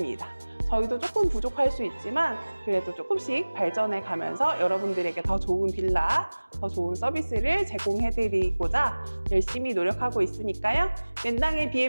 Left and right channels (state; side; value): inverted; both; correlation -1.00